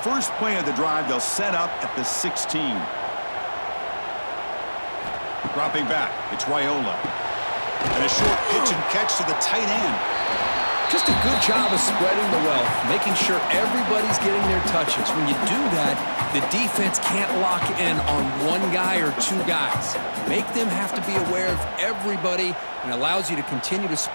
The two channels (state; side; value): inverted; both; correlation -1.00